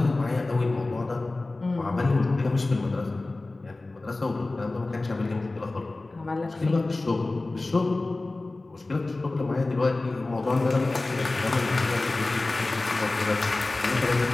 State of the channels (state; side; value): quieter; right; 3.1 dB